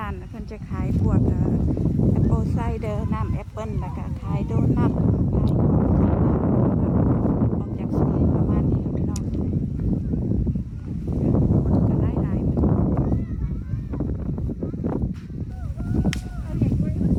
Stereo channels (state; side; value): identical; both; correlation 1.00